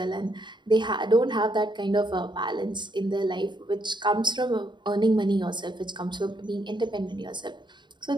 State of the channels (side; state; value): left; late; 0.22 ms